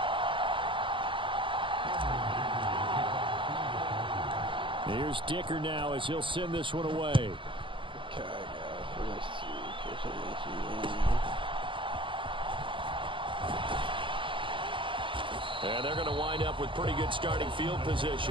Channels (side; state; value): left; late; 0.25 ms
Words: Here's Dicker now as he'll send this one away. And they're going to wind up with pretty good starting field